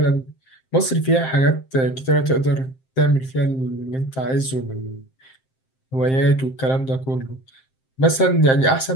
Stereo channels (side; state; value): right; late; 7.6 ms